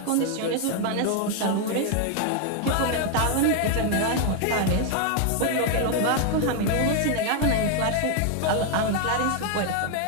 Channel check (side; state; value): both; different; correlation 0.00